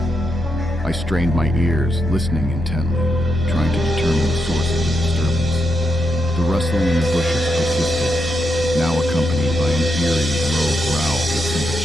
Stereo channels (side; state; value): both; normal; correlation 0.83